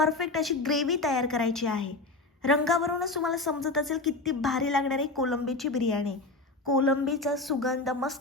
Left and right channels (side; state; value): right; quieter; 3.3 dB